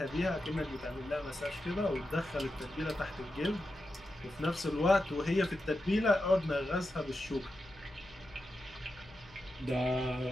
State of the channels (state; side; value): noise; left; hum, 24 dB below the sound